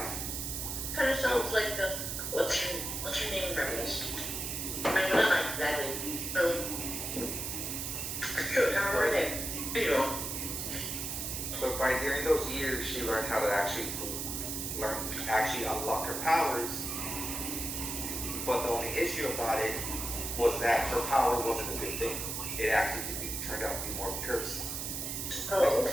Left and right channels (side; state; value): right; noise; hiss, 3 dB below the sound